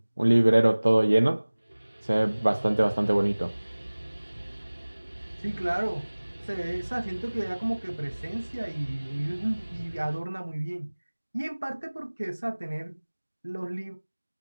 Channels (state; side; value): inverted; both; correlation -1.00